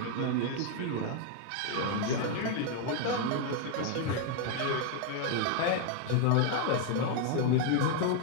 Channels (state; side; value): different; both; correlation 0.01